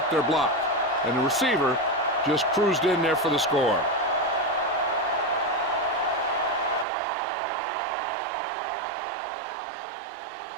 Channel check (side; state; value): left; drops out; at 6.9 s